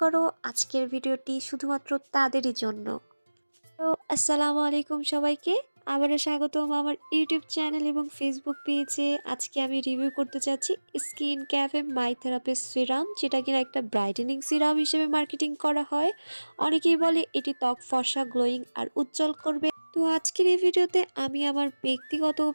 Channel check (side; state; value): both; inverted; correlation -1.00